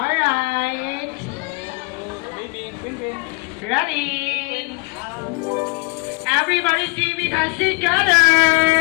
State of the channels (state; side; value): quieter; right; 30.6 dB